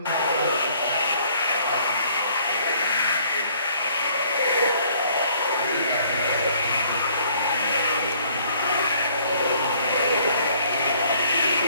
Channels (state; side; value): inverted; both; correlation -0.61